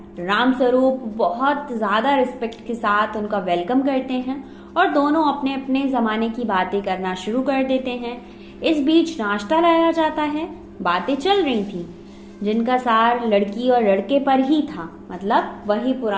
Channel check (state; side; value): identical; both; correlation 1.00